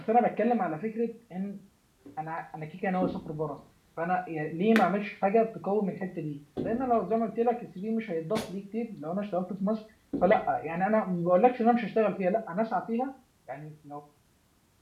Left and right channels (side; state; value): both; identical; correlation 1.00